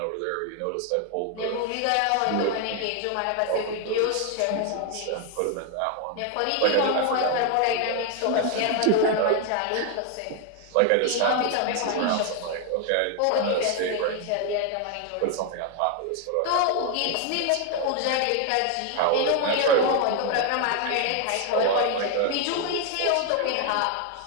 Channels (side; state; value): both; different; correlation 0.01